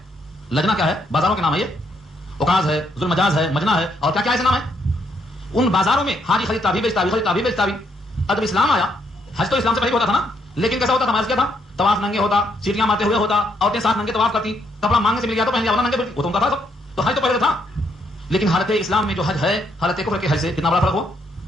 لجنا کیا ہے؟ بازاروں کے نام ہے. یہ اوکاز ہے، ذوالمجاز ہے، مجنا ہے، اور کیا کیا ایسے نام ہے. ان بازاروں میں حاجی خریدتا بھی بیچتا بھی، خریدتا بھی بیچتا بھی. اب اسلام آیا، حج تو اسلام سے پہلے ہوتا تھا نا، لیکن کیسا ہوتا تھا؟ ہمارا کیا تھا؟ طواف ننگے ہوتا، سیٹیاں مارتے ہوئے ہوتا، عورتیں ساتھ ننگے طواف کرتی، کپڑا مانگنے سے مل گیا تو پہن لیا، ورنہ ننگے پھرتی. وہ تو ان کا تھا سب. تو حج تو پہلے تھا. لیکن حالت اسلام میں جو حج ہے، حالت کفر کے حج سے کتنا بڑا فرق ہوا.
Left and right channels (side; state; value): both; normal; correlation 0.74